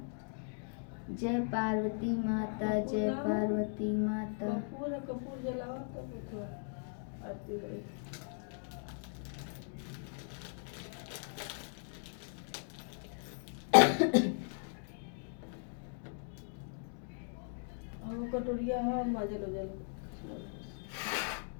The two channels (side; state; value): right; silent; 52 dB below the other